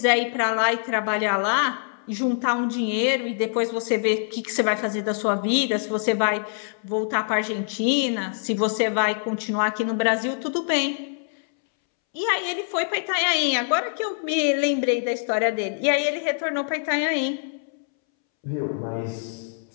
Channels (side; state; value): right; silent; 62 dB below the other